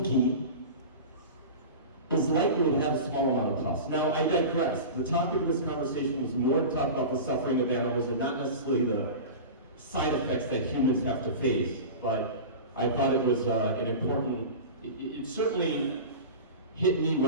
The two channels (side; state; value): both; inverted; correlation -0.31